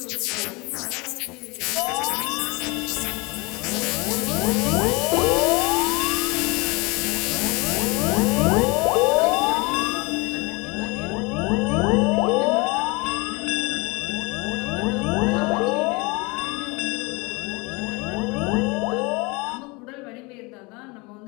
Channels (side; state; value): right; quieter; 26.8 dB